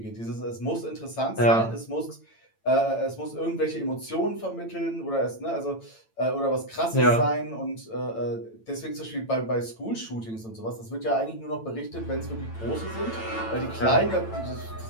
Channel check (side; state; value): right; late; 8.9 ms